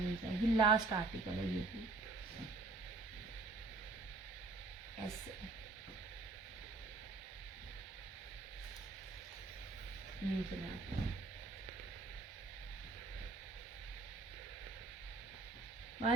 जाएगी। लास्ट आर्टिकल है ये भी ऐसे। नहीं चला,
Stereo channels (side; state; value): left; quieter; 3.6 dB